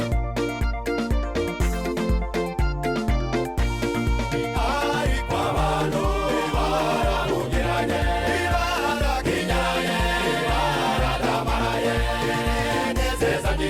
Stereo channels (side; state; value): both; identical; correlation 1.00